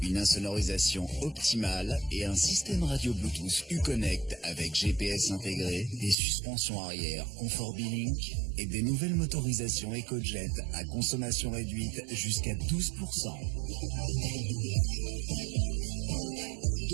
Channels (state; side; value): drops out; left; at 6.2 s